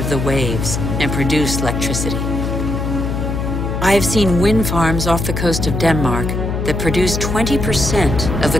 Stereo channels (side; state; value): left; noise; hum, 2 dB below the sound